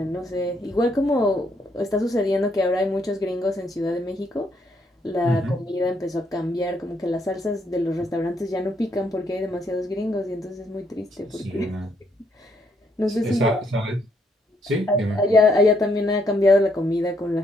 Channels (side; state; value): both; normal; correlation 0.73